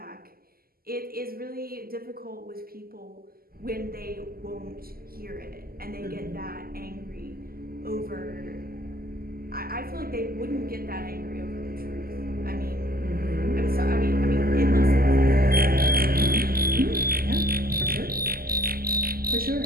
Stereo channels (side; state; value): left; late; 0.43 ms